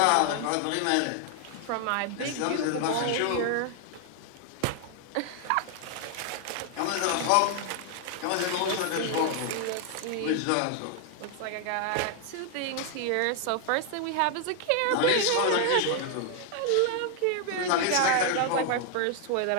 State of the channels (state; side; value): different; both; correlation 0.00